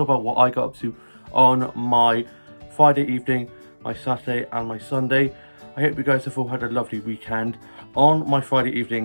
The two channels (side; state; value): both; inverted; correlation -1.00